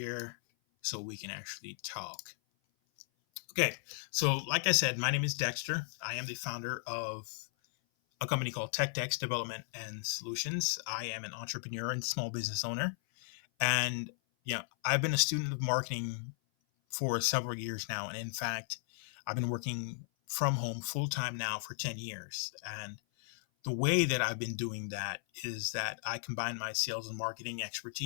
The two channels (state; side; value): silent; right; 54 dB below the other